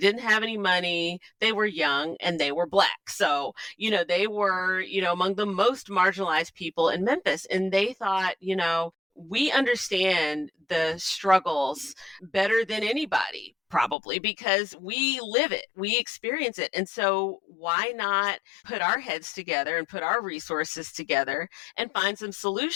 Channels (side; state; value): right; drops out; at 14.0 s